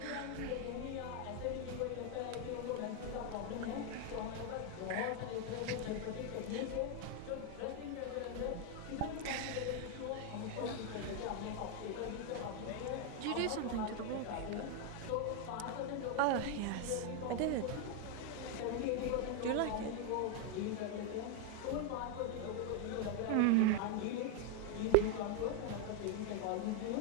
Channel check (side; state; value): both; different; correlation 0.01